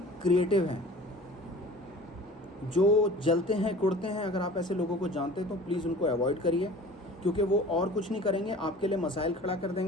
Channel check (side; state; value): both; normal; correlation 0.43